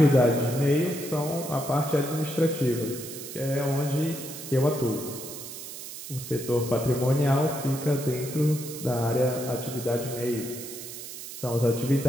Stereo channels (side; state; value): right; noise; hiss, 11 dB below the sound